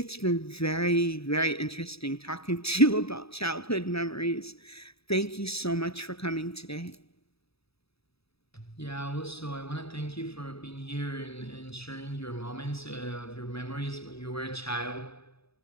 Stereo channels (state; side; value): late; right; 0.78 ms